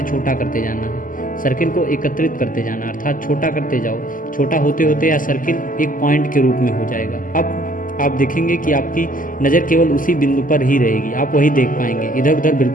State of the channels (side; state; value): right; late; 0.39 ms